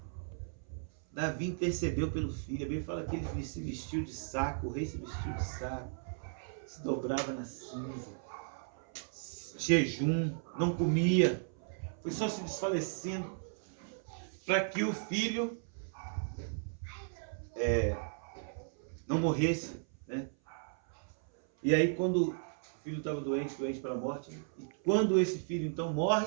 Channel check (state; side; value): silent; left; 54 dB below the other